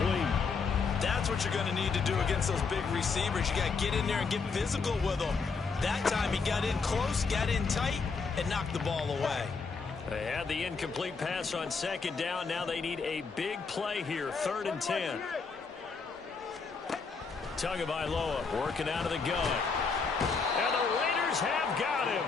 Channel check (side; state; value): right; quieter; 4.9 dB